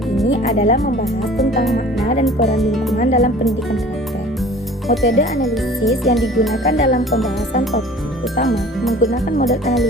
ini adalah membahas tentang makna dan peran lingkungan dalam pendidikan karakter. Metode analisis yang digunakan dalam pembahasan topik utama menggunakan model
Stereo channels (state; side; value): normal; both; correlation 0.46